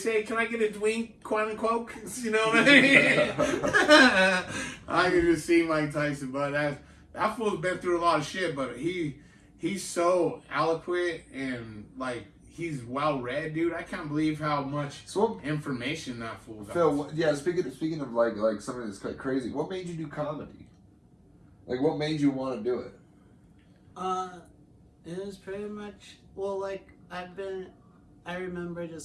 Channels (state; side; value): identical; both; correlation 1.00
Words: "Can I get a Dwink, quote unquote?" You know what I mean? I can just see Mike Tyson, but that fool's been through a lot of shit. But he's so eloquent and like. He's well read, dude. I can't believe how much information that fool got. Phil, speaking of like something that's quite crazy, what made you do comedy? Like, what made you want to do it? It was pretty much like I remember